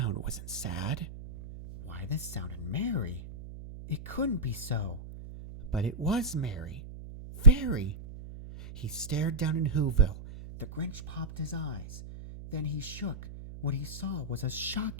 wasn't sad. Why, this sounded merry. It couldn't be so, but it was merry. Very. He stared down in Whoville. The Grinch popped his eyes. Then he shook. What he saw was a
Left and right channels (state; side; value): noise; right; hum, 13 dB below the sound